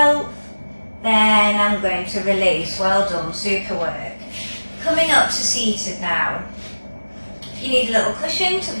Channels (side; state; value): both; inverted; correlation -1.00